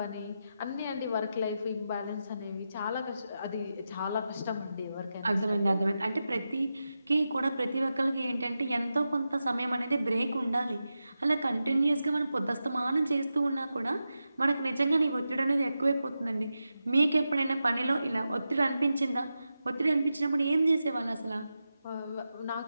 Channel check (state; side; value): inverted; both; correlation -0.90